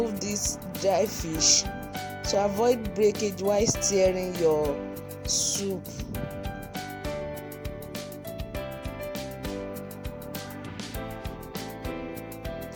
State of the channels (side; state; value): both; identical; correlation 1.00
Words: this dry fish to avoid breakage while stirring your soup.